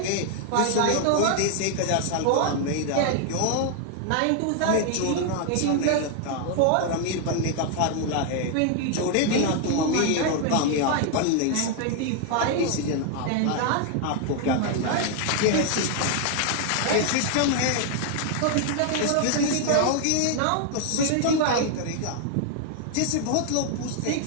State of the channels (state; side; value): different; both; correlation 0.00